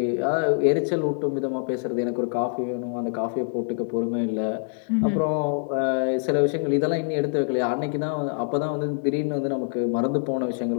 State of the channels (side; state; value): right; silent; 62 dB below the other